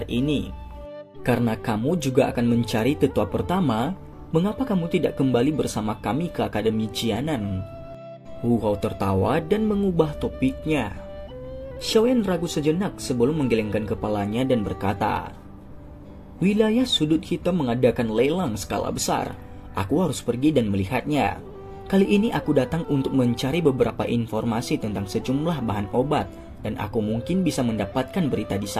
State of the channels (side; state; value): both; identical; correlation 1.00